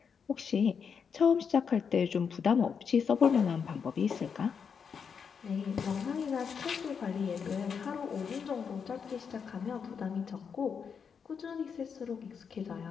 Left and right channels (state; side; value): quieter; right; 6.5 dB